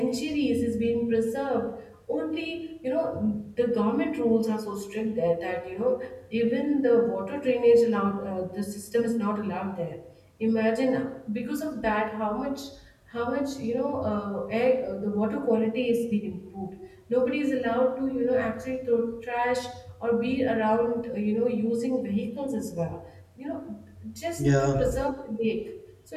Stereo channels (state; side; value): identical; both; correlation 1.00